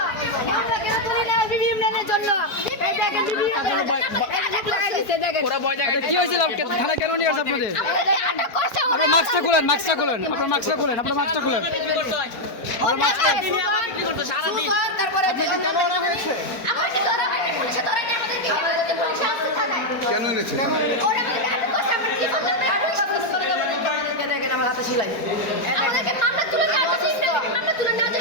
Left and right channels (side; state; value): right; late; 4.5 ms